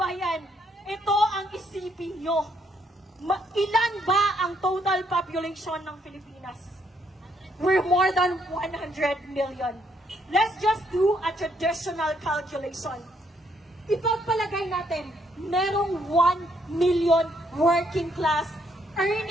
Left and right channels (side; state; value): both; normal; correlation 0.72